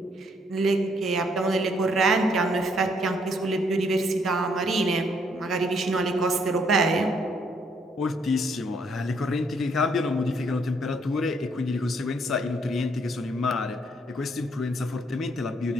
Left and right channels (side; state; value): both; normal; correlation 0.69